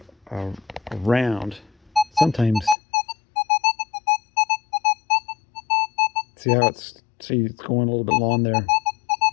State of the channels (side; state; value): right; drops out; at 2.8 s